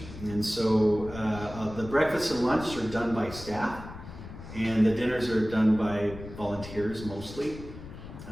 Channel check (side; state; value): left; noise; rumble, 13 dB below the sound